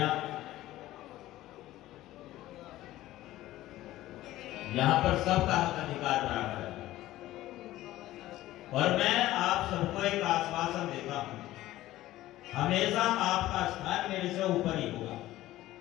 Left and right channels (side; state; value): right; quieter; 15.6 dB